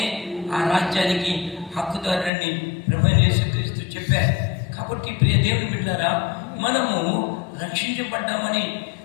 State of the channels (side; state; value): right; drops out; at 2.3 s